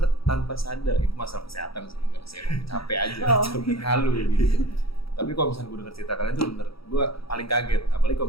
tanpa sadar, itu masalah kesehatan sih, nggak sih, emang capek aja, capek halu gitu. Tapi kalau misalnya gue denger cerita kalian tuh bener, gue paling kaget. Apalagi kalau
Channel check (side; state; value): right; late; 0.76 ms